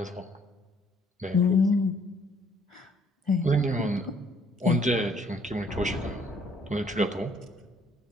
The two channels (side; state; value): both; normal; correlation 0.63